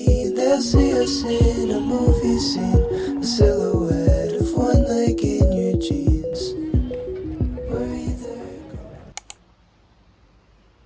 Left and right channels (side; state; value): both; identical; correlation 1.00